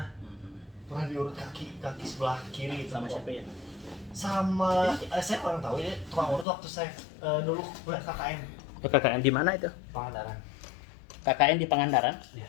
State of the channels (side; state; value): right; drops out; at 6.5 s